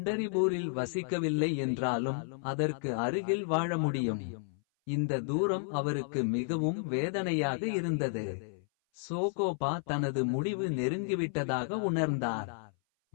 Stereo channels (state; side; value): silent; right; 56 dB below the other